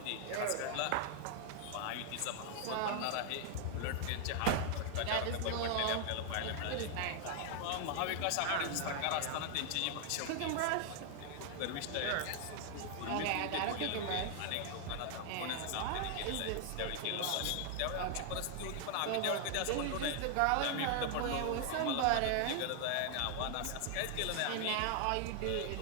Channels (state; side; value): different; both; correlation 0.00